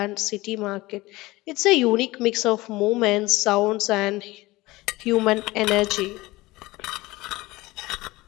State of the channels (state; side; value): quieter; right; 20.0 dB